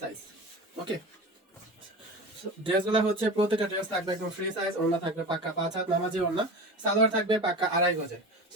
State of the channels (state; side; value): normal; both; correlation 0.31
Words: সাইজ। ওকে, ড্রেসগুলো হচ্ছে প্রত্যেকটা ড্রেস থাকবে একদম ফ্রি সাইজ, ওড়না থাকবে পাক্কা 5 হাত নামাজি ওড়না, সালোয়ার থাকবে পাক্কা 2.5 গজে। তো